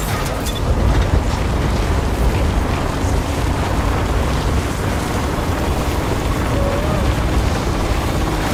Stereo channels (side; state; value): both; identical; correlation 1.00